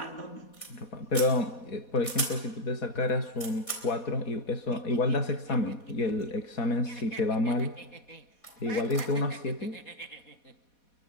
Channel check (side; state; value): right; late; 4.1 ms